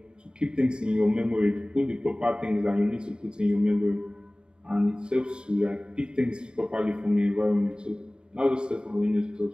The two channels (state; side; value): late; left; 0.050 ms